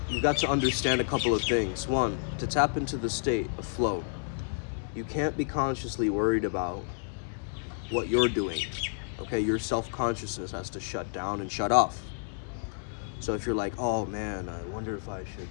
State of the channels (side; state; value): right; silent; digital silence